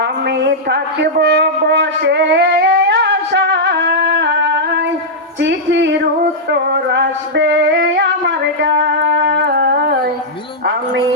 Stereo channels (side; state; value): both; normal; correlation -0.08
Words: আমি থাকব বসে আশায়, চিঠির উত্তর আসবে আমার গায়। আমি